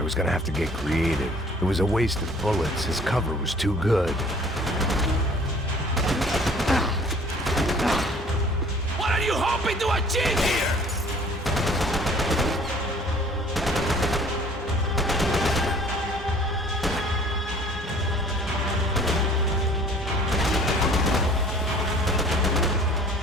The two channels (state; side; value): normal; both; correlation 0.52